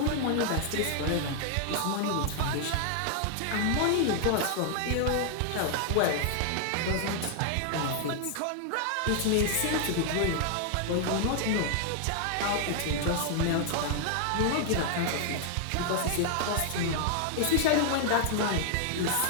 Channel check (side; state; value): both; different; correlation 0.00